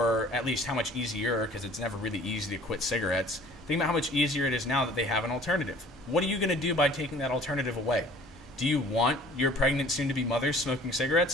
at least how much easier, because it's never really easy to quit cigarettes. Think about how much easier it is now that they have an alternative. What are you going to do by taking that alternative away? Do you want your pregnant soon-to-be mothers smoking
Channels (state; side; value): normal; both; correlation 0.51